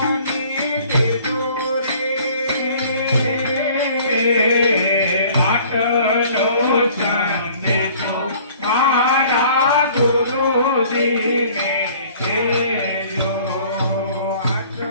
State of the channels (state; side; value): inverted; both; correlation -0.53